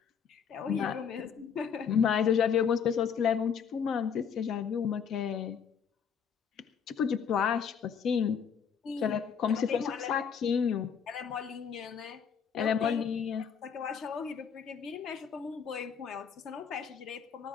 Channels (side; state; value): right; quieter; 7.1 dB